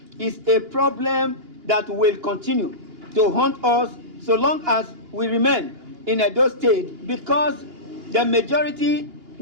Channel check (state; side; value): late; left; 2.8 ms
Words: is a problem that will continue to haunt us so long as we remain in Edo State, because the majority